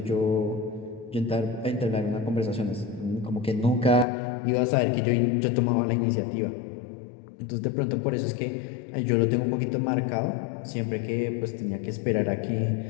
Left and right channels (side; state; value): right; drops out; at 4.0 s